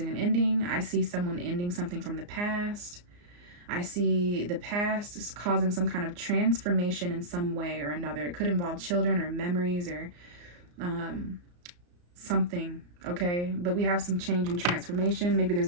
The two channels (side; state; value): left; late; 34 ms